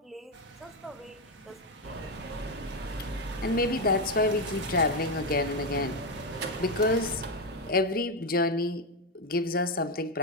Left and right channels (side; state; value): both; normal; correlation 0.08